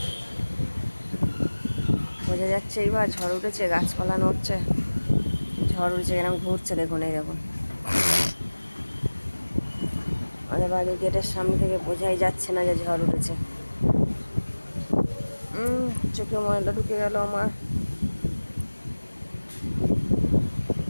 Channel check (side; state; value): both; inverted; correlation -1.00